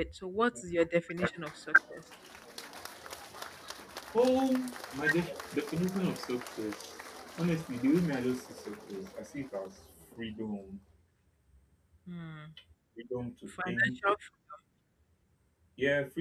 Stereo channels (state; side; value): identical; both; correlation 1.00